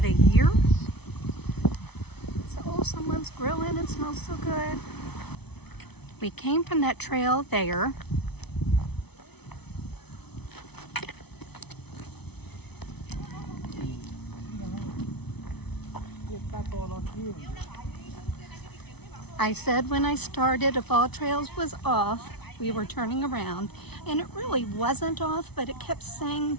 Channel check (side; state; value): right; late; 0.99 ms